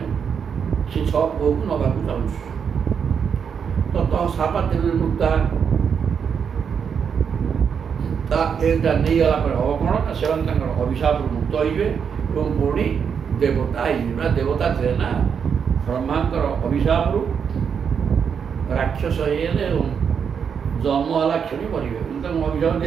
ସେ 6 ପୁଅକୁ ନେବାକୁ ଚାହୁଁଛୁ। ତତଃ ଶାପାତ୍ ବିନିର୍ମୁକ୍ତା, ଏଇଟା ନେଇଗଲା ପରେ ହବ କ'ଣ ନା ସେମାନେ ତାଙ୍କର ଅଭିଶାପରୁ ମୁକ୍ତ ହେଇଯିବେ ଏବଂ ପୁଣି ଦେବତା ହେଇଯିବେ। ନା ଦେବତା ଥିଲେ ନା, ବ୍ରହ୍ମାଙ୍କର ଅଭିଶାପରୁ ରାକ୍ଷସ ହେଇଗଲେ ଏବଂ ଜନ୍ମ ହେଲା କ୍ଷଣି ମରିବେ। କିନ୍ତୁ ତାଙ୍କୁ ଅଭିଶାପ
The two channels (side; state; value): left; quieter; 7.0 dB